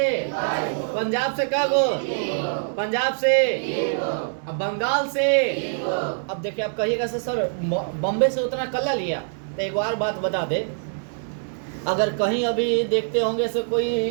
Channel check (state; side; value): silent; left; 62 dB below the other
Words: पंजाब से क्या गो? पंजाब से। अब बंगाल से। अब देखिए, आप कहिएगा सर बॉम्बे से उतना कल्ला लिया, तो एक बार बात बता दे, अगर कहीं अभी देखते होंगे से